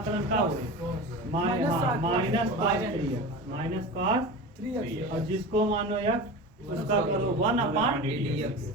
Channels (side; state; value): both; normal; correlation 0.30